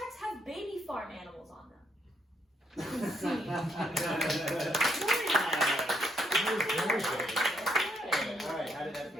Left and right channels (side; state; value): both; normal; correlation 0.74